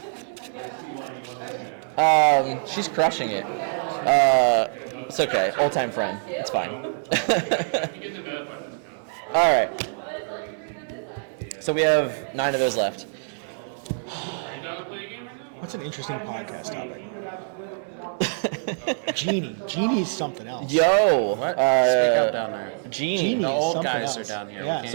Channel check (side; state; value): left; silent; digital silence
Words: She's crushing it. It's okay. Old-time friend. It's fine. All right. So we have 9 of those left. That's an interesting podcast topic. Genie. Genie is something else. Yo. What? Speak up down there. Genie. Genie The is old something guys else. are down here. We Yeah. can't